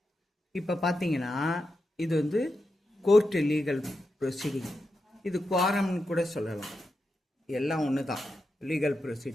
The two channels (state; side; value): normal; both; correlation 0.88